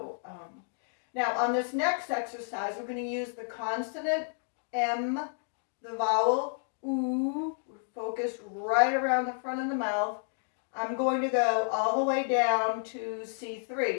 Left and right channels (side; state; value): right; silent; digital silence